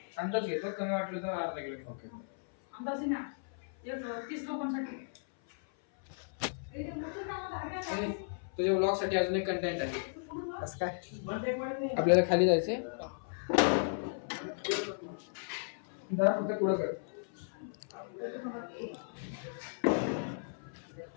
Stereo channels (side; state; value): right; silent; 54 dB below the other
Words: घेतो, कमी वाटलं तर अर्धा किलो. ओके, अंदाज ना 30 लोकांसाठी. तुझ्या व्लॉग साठी अजून एक कंटेंट आहे. कसं काय? आपल्याला खाली जायचंय. फक्त पुढं कर.